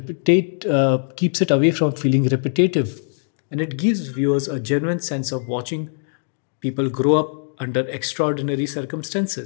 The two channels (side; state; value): right; silent; digital silence